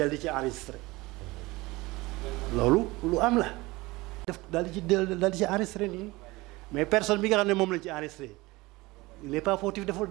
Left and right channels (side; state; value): left; quieter; 21.4 dB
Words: di ci enregistré loolu lu am la def daal di ci enregistré nii mais personne bi nga xam ne moom lañ ci enregistré il n'est pas fautif deful